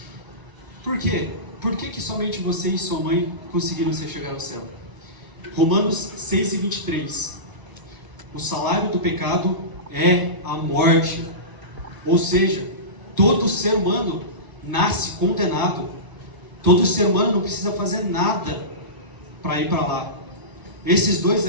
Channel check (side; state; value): left; late; 1.0 ms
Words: Por quê? Por que somente você e sua mãe conseguiram chegar ao céu? Romanos 6:23. O salário do pecado é a morte. Ou seja, todo ser humano nasce condenado. Todo ser humano não precisa fazer nada para ir para lá. Esses dois